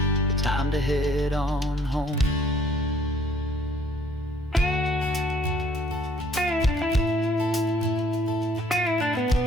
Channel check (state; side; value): normal; both; correlation 0.61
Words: Time to head on home.